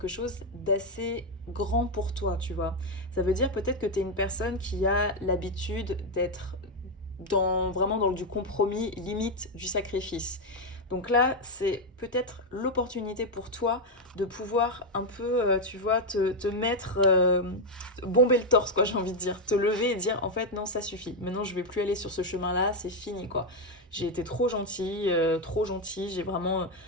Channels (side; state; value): both; normal; correlation 0.04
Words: chose d'assez grand pour toi, tu vois. Ça veut dire peut-être que tu es une personne qui a l'habitude d'être vraiment dans du compromis, limite du sacrifice. Donc là, c'est peut-être l'opportunité pour toi de pouvoir un peu, tu vois, te mettre, bomber le torse, quoi, j'ai envie de dire. Te lever et dire, en fait, non, ça suffit. Maintenant, je vais plus aller sur ce chemin-là, c'est fini, quoi. J'ai été trop gentille, j'ai vraiment